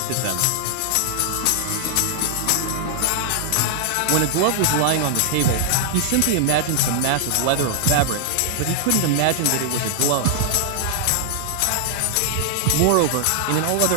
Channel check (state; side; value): different; both; correlation -0.01